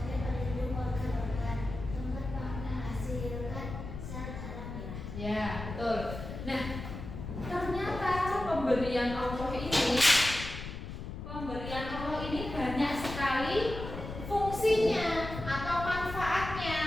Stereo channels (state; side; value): noise; left; rumble, 8 dB below the sound